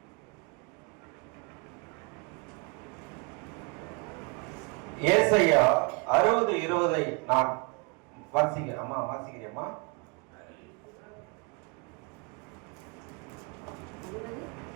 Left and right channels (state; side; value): quieter; left; 31.6 dB